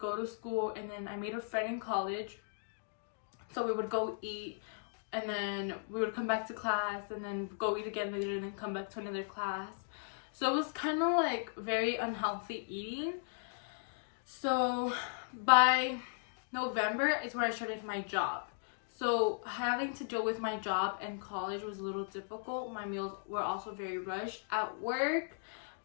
to school and then I made a friend in college. So we would go eat and then we would come back to class and then go eat again later and then come back to another class. So it was kind of like very unhealthy eating. So by November is where I started my job. So having to deal with my job and college was a little difficult. My meals were also very rushed. At work,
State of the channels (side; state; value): right; silent; digital silence